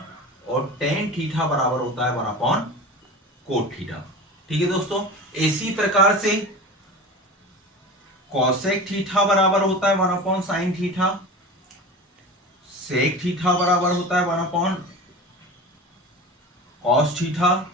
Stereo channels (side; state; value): both; normal; correlation 0.32